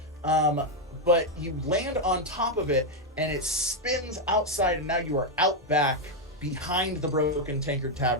but you land on top of it and it spins outside, and now you are out back behind the Broken Tankard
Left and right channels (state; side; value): normal; both; correlation 0.03